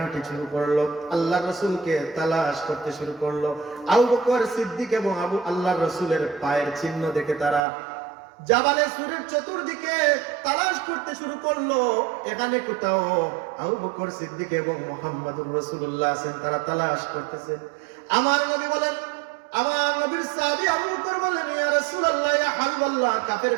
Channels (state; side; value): drops out; left; at 7.7 s